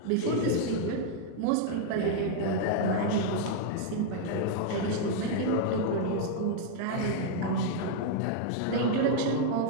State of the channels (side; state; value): both; different; correlation -0.01